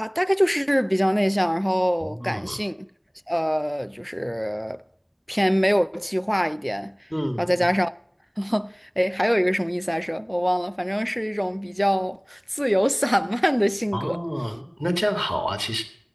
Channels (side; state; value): both; identical; correlation 1.00